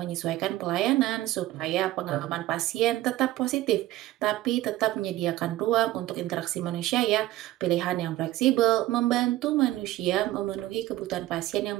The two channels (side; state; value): left; quieter; 15.8 dB